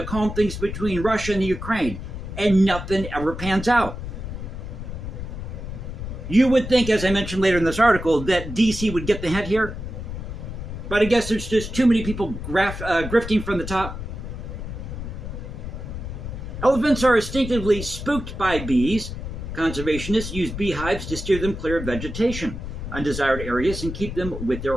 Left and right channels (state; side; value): noise; left; rumble, 7 dB below the sound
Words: calm things between Russia and the Ukraine, and nothing ever pans out? You would think, as I mentioned later in this article, that D.C. would get the hint here. But I guess there's just too many people grifting from the top. Elephants are instinctively spooked by bees. Conservationists use beehives to steer them clear of vegetation, undesired areas, and keep them with their